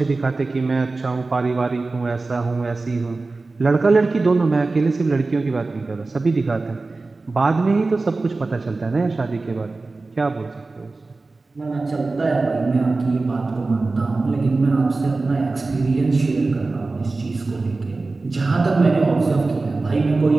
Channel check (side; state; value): left; quieter; 3.5 dB